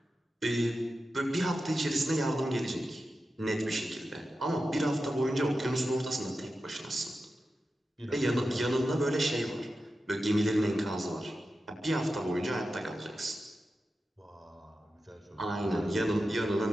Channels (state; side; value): normal; both; correlation 0.92